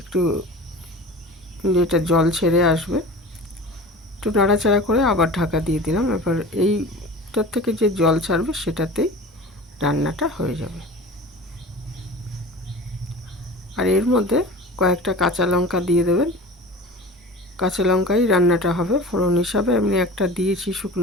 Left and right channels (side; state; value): both; normal; correlation 0.37